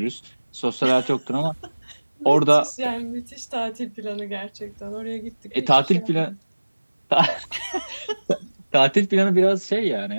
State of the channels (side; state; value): both; inverted; correlation -1.00